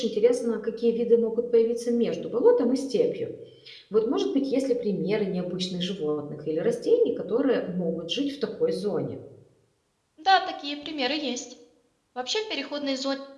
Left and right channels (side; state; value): both; identical; correlation 1.00